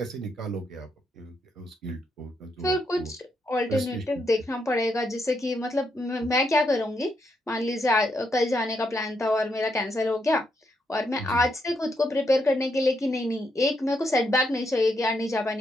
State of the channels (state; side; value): normal; both; correlation 0.79